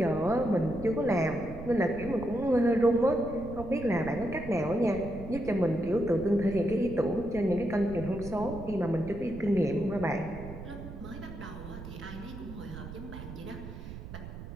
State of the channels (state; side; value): noise; right; rumble, 12 dB below the sound